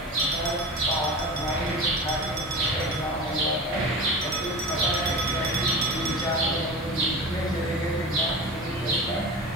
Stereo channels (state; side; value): normal; both; correlation 0.31